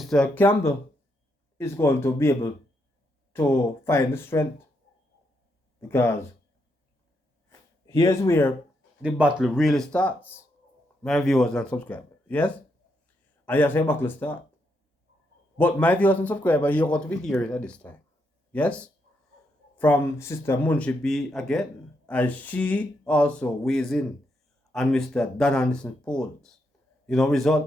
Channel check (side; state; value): both; normal; correlation 0.80